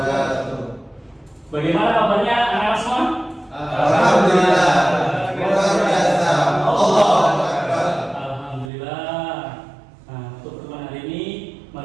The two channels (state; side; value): drops out; left; at 8.7 s